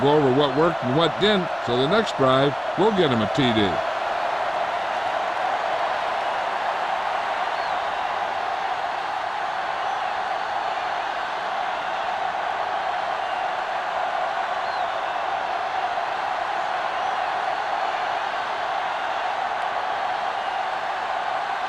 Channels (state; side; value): identical; both; correlation 1.00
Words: go over what worked and what didn't, so the next drive will get him a TD.